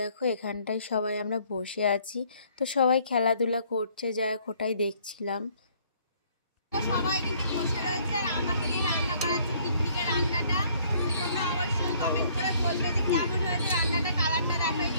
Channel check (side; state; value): both; inverted; correlation -0.61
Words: দেখো এখানটায় সবাই আমরা বসে আছি, তো সবাই খেলাধুলা করছে, যা ওটাই দেখছিলাম। সবাই কিন্তু বসে রয়েছে, আর আমাকে দিয়ে রান্না করাচ্ছে পিকনিকের রান্নাটা। তোমরা অবশ্যই কমেন্ট করে বলবে যে কেমন হয়েছে রান্নাটা, কালারটা দেখো